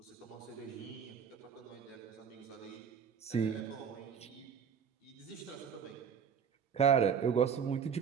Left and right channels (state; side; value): quieter; left; 7.2 dB